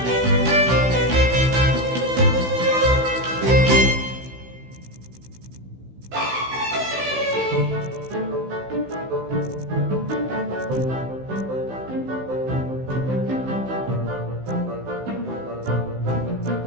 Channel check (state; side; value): late; left; 16 ms